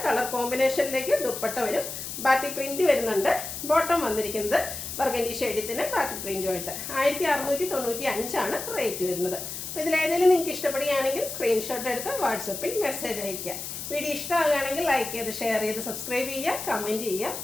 കളർ കോമ്പിനേഷനിലേക്ക് ദുപ്പട്ട വരും. ബാത്തി പ്രിൻറ്റ് വരുന്നുണ്ട്. ബോട്ടം വന്നിരിക്കുന്നത് ബർഗൻഡി ഷെയ്ഡത്തിന് ബാത്തി പ്രിൻറ്റുമായിട്ട് 1695 ആണ് റേറ്റ് വരുന്നത്. അപ്പോൾ ഇതിലേതെങ്കിലും നിങ്ങൾക്ക് ഇഷ്ടപ്പെടുകയാണെങ്കിൽ സ്ക്രീൻഷോട്ട് എടുത്ത് വാട്സപ്പിൽ മെസ്സേജ് അയയ്ക്കുക. വീഡിയോ ഇഷ്ടമാകുകയാണെങ്കിൽ ലൈക്ക് ചെയ്ത് ഷെയർ ചെയ്ത് സബ്സ്ക്രൈബ് ചെയ്യുക, കമൻറ്റ് ചെയ്യുക,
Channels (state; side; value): noise; left; hiss, 7 dB below the sound